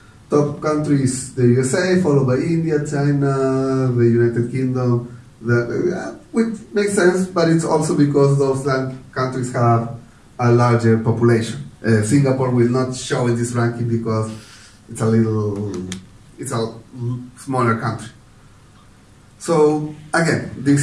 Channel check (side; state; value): both; identical; correlation 1.00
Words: Top countries, the USA, followed by India, China, the United Kingdom, which makes sense, but it's also because those countries have a larger population. Singapore will not show in this ranking because it's a smaller country. So again,